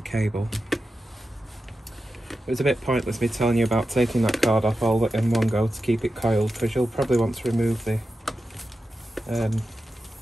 cable. It was a bit pointless me telling you about taking that card off all in one go to keep it coiled, because you'll probably want to remove the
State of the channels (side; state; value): both; normal; correlation 0.91